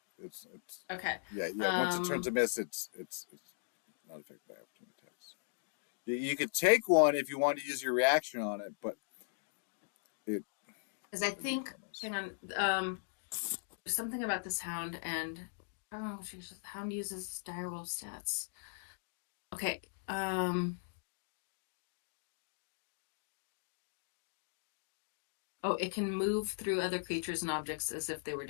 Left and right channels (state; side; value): silent; right; digital silence